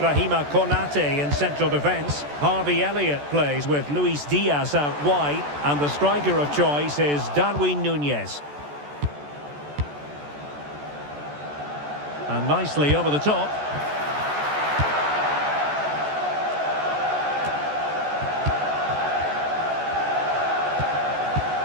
Konate in central defence. Harvey Elliott plays with Luis Diaz out wide. And the striker of choice is Darwin Núñez. And nicely over the top.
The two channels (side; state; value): left; late; 14 ms